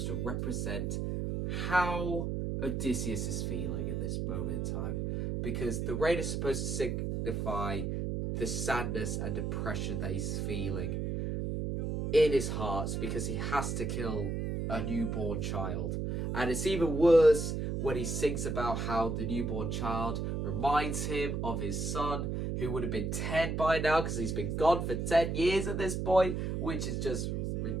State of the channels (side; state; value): right; noise; hum, 1 dB below the sound